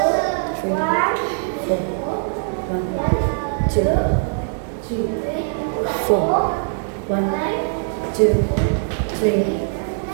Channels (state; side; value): silent; left; digital silence